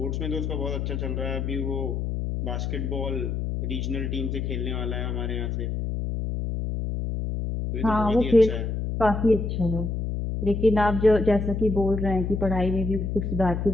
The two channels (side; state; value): left; noise; hum, 2 dB below the sound